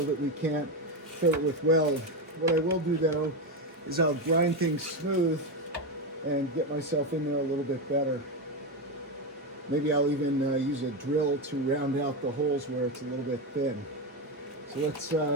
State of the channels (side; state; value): both; normal; correlation 0.11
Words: that we can't fill it with weld. What I will do though is I'll grind things smooth and get myself in there a little bit better. Maybe I'll even use a drill to round out the holes where it's a little bit thin. So